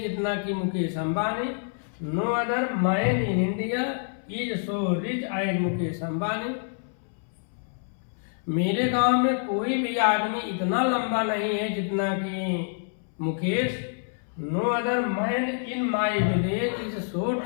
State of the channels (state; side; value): silent; right; 60 dB below the other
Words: जितना कि Mukesh Ambani. No other man in India is so rich as Mukesh Ambani. मेरे गांव में कोई भी आदमी इतना लंबा नहीं है जितना कि Mukesh. No other man in my village is so